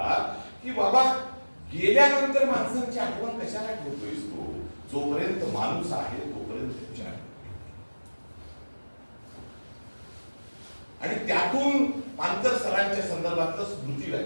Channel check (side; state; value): both; inverted; correlation -1.00